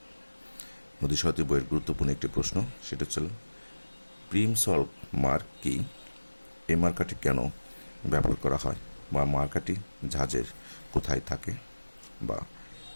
নদী সারথি বইয়ের গুরুত্বপূর্ণ একটি প্রশ্ন, সেটা হচ্ছে প্রিম সল্ভ মার্ক কি? এই মার্কাটি কেন ব্যবহার করা হয়, বা মার্কাটি জাহাজের কোথায় থাকে, বা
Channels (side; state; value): both; inverted; correlation -1.00